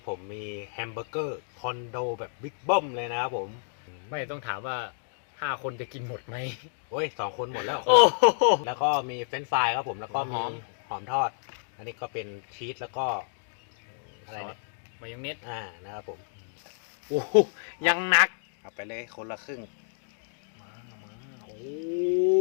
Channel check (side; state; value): right; silent; digital silence